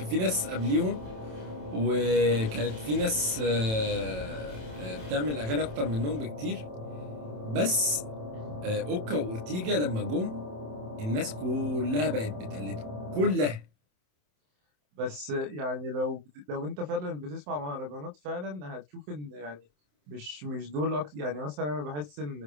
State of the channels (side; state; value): left; late; 27 ms